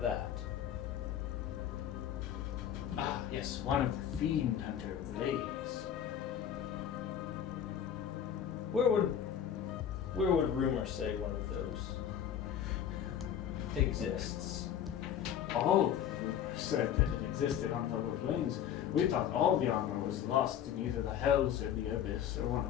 Ah, yes, one of the fiend hunter blades. Where would rumor say one of those exists? All the rumors said that it existed on the lower plains. We thought all the armor was lost in either the hells or the abyss or one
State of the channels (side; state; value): right; quieter; 9.5 dB